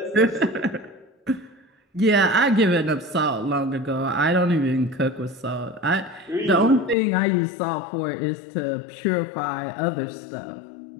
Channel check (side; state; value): right; drops out; at 7.0 s